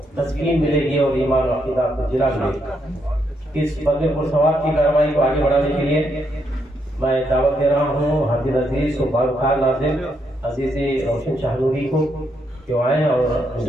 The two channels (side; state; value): both; normal; correlation 0.77